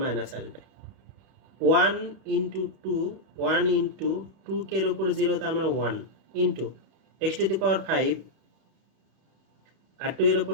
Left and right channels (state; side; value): late; left; 31 ms